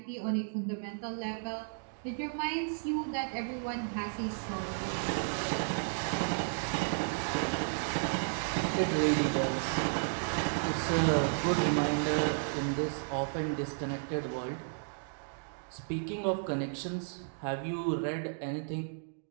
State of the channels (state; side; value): silent; left; digital silence